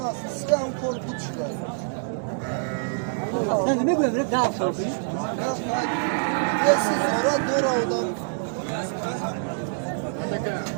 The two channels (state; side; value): silent; left; digital silence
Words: سه اون کار بود شده نه نمیگم ده سال پیش یه سیزارا دور آدم